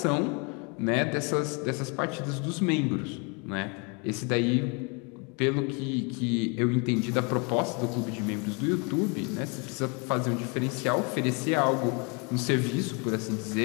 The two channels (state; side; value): quieter; right; 32.7 dB